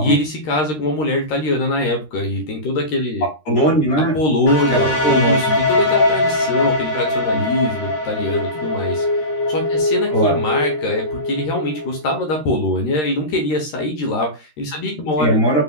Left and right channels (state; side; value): late; right; 13 ms